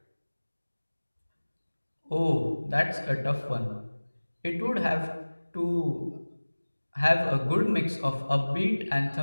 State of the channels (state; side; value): inverted; both; correlation -1.00